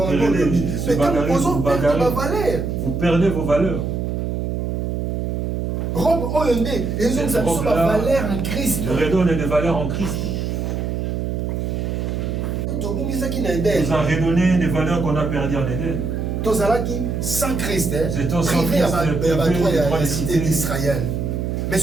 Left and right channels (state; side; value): noise; right; hum, 2 dB below the sound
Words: se bagarrer, vous perdez vos valeurs. Le redonne des valeurs en Christ. Nous a redonné des valeurs qu'on a perdues en Éden. Sans Christ, privé à la cité d'Israël. Mais